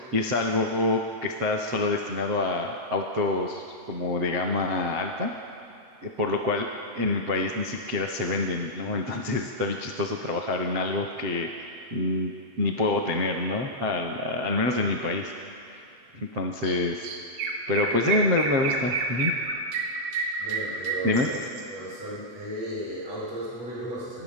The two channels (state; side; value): late; left; 7.8 ms